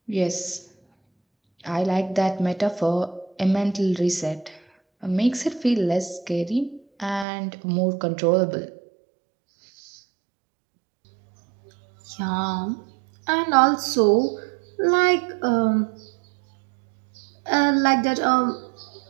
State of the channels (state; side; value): drops out; left; at 7.2 s